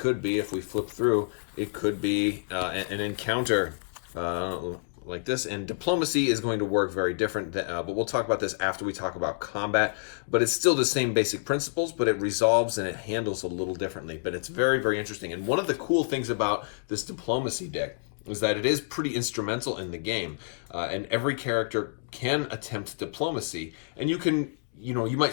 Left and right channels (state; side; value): silent; right; digital silence